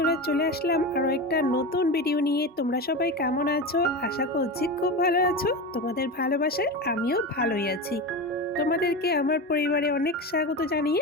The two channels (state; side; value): normal; both; correlation 0.23